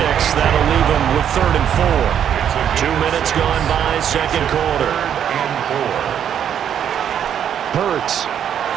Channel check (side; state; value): left; quieter; 9.1 dB